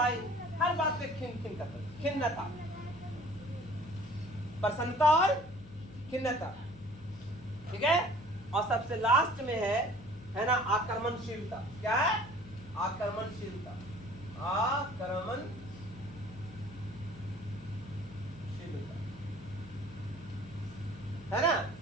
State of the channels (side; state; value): left; noise; hum, 18 dB below the sound